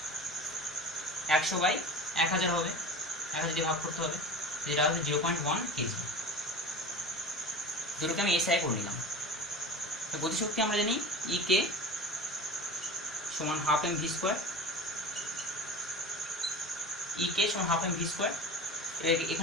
1000 হবে, 1000 দিয়ে ভাগ করতে হবে, যেটা হবে 0.1 কেজি। দুটোকে আমি এসআই করে নিলাম। তো গতিশক্তি আমরা জানি ই কে সমান হাফ এম ভি স্কোয়ার, ই কে সমান হাফ এম ভি স্কোয়ার।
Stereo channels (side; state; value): both; normal; correlation 0.33